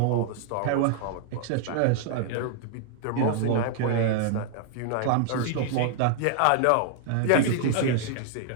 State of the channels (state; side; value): different; both; correlation 0.00